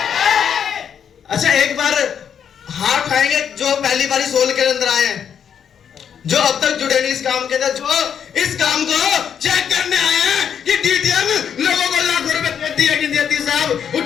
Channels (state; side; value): quieter; right; 8.1 dB